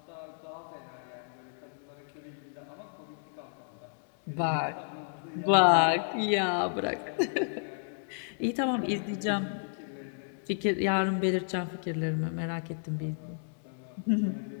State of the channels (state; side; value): silent; right; digital silence